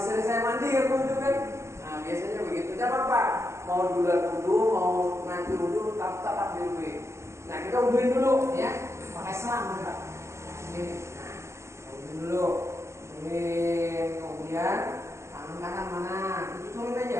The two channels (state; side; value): late; left; 0.13 ms